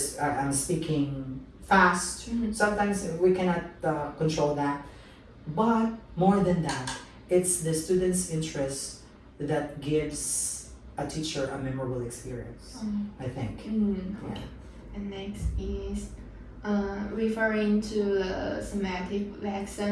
I'm speaking fast, sometimes we cannot control that. But more than that, it's the student's interest that gives a teacher a memorable experience, I think. Okay. And next is referring to the thematic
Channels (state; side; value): identical; both; correlation 1.00